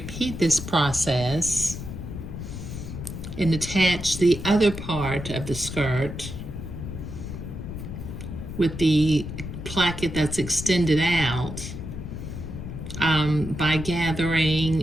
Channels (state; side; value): noise; left; rumble, 8 dB below the sound